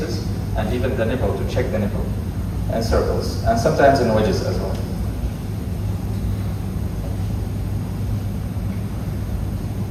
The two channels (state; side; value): identical; both; correlation 1.00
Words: and even the nipple to check the nipple, and circles, and sometimes in wedges as well.